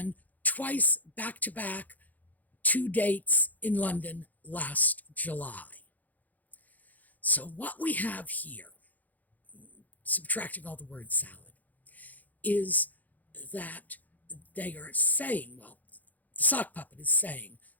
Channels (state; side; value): late; right; 0.081 ms